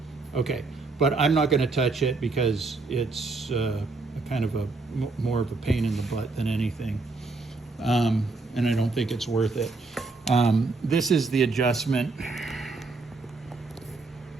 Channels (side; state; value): left; quieter; 3.7 dB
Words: Okay, but I'm not going to touch it because it's kind of more of a pain in the butt than anything, and I don't think it's worth it. This is the adjustment.